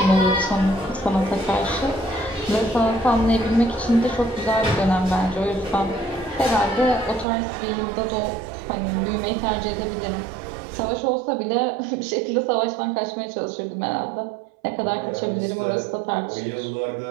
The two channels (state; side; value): drops out; left; at 7.2 s